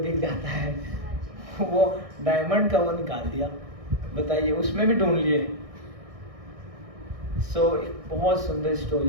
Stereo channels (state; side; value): late; left; 1.6 ms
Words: जाता है। वो डायमंड का वो निकाल दिया, बताइए, उसमें भी ढूंढ लिए। सो एक बहुत सुंदर